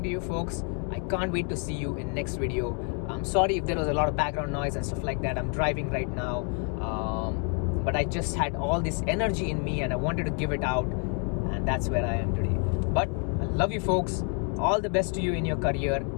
to you folks. I can't wait to see you in next video. I'm sorry if there was a lot of background noise and stuff like that. I'm driving right now, but I just had all this energy in me and I wanted to give it out, and that's where I am today. But I love you folks. All the best to you in your career.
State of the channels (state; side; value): quieter; right; 39.4 dB